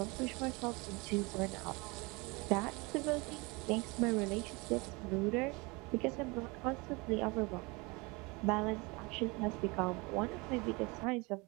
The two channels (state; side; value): quieter; left; 26.6 dB